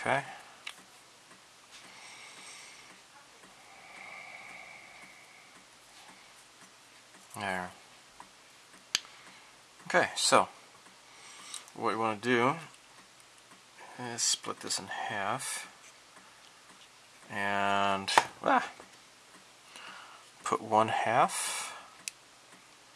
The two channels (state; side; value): identical; both; correlation 1.00